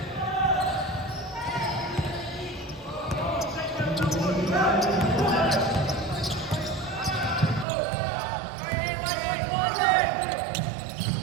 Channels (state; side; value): drops out; left; at 7.7 s